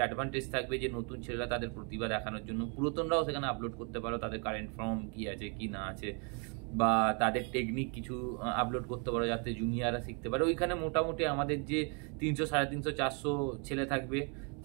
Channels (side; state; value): left; quieter; 36.1 dB